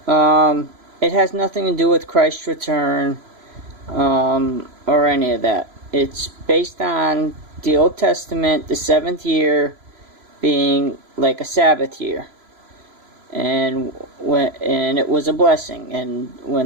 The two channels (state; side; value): late; left; 3.0 ms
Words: it has nothing to do with Christ's return or any of that. It's based on the Old Testament, the 7th year being like a Sabbath year, and it was a blessing, and